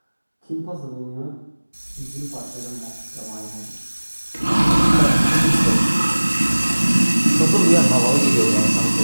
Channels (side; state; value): both; inverted; correlation -1.00